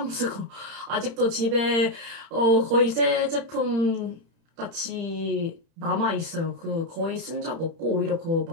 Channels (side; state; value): left; late; 30 ms